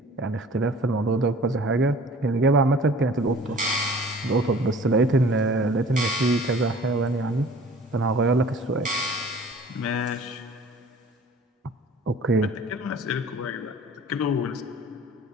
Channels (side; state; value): both; normal; correlation 0.48